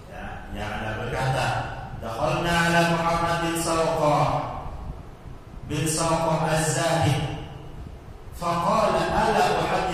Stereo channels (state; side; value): identical; both; correlation 1.00